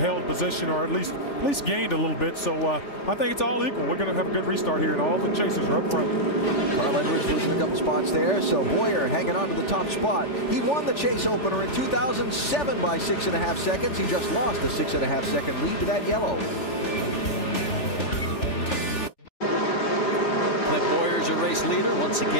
position or at least gained a little bit. So I think it's all equal. We're going to have a good restart here, and all the chasers are up front. Carl Edwards losing a couple spots there, so Boyer hanging on to the top spot. He won the chase opener in 2007 by 6.5 seconds. He just lost a 6.5 second lead to that yellow. Clint Boyer's a race leader once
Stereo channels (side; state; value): right; late; 3.4 ms